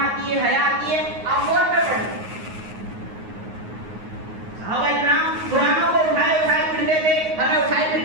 ہے، حیا آتی ہے، آپ فون پہ پڑھیں۔ صحابہ اکرام قرآنوں کو اٹھائے پھرتے تھے، ہمیں اٹھائے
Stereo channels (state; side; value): late; left; 9.5 ms